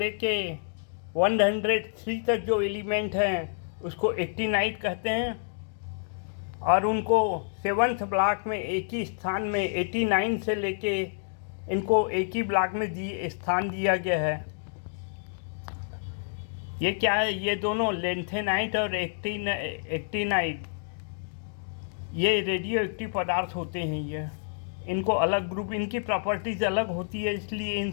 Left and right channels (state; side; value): silent; right; digital silence